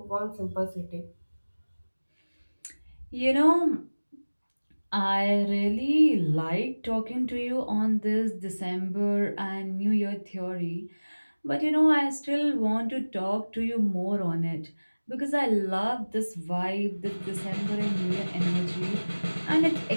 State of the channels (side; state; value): both; inverted; correlation -1.00